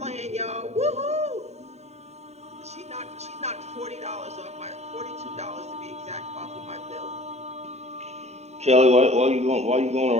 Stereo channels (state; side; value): late; left; 0.32 ms